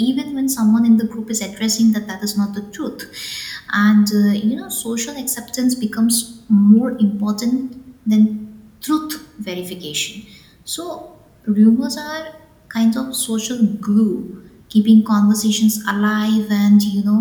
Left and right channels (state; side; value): identical; both; correlation 1.00